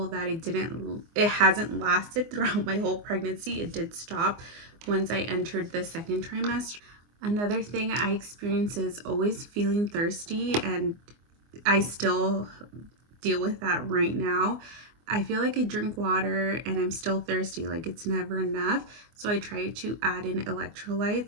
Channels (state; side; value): late; left; 24 ms